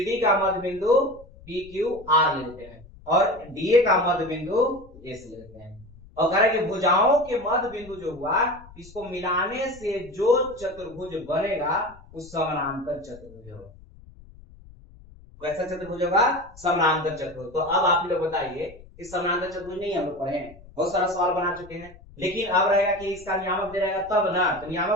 का मध्य बिंदु PQR लेते हैं, और DA का मध्य बिंदु S लेते हैं। और कह रहे कि भुजाओं के मध्य बिंदु जो हुआ, इसको मिलाने से जो चतुर्भुज बनेगा उस समानांतर चतुर्भुज होगा। वैसा चतुर्भुज होगा समानांतर चतुर्भुज। तो अब आप लोग बताइए, इस समानांतर चतुर्भुज नहीं हम लोग पढ़े हैं, बहुत सारा सवाल बना चुके हैं, लेकिन अब रहेगा कि इसका नियामक दे रहेगा तब ना, तो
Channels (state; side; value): noise; left; rumble, 21 dB below the sound